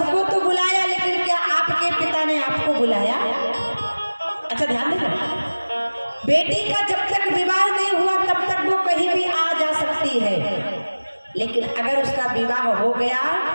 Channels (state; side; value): inverted; both; correlation -1.00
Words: तो बुलाया, लेकिन क्या आपके पिता ने आपको बुलाया? अच्छा ध्यान देना, बेटी का जब तक विवाह नहीं हुआ तब तक वो कहीं भी आ जा सकती है, लेकिन अगर उसका विवाह हो गया